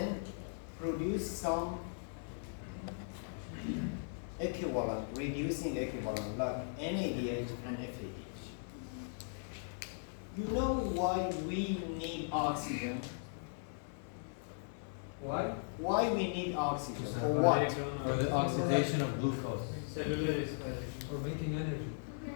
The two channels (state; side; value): silent; right; digital silence